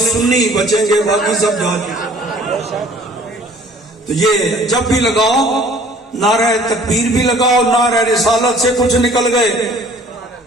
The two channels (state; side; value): normal; both; correlation 0.53